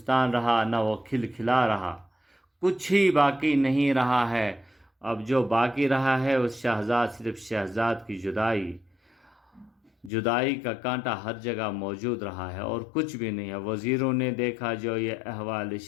رہا، نہ وہ کھل کھلا رہا، کچھ ہی باقی نہیں رہا ہے۔ اب جو باقی رہا ہے اس صرف شہزاد کی جدائی۔ جدائی کا کانٹا ہر جگہ موجود رہا ہے اور کچھ بھی نہیں ہے۔ وزیروں نے دیکھا جو یہ احوال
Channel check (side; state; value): right; drops out; at 10.1 s